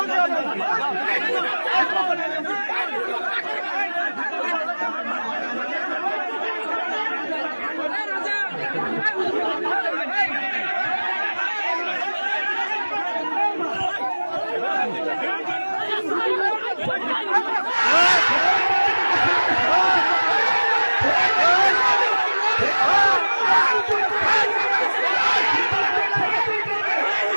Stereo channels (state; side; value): inverted; both; correlation -1.00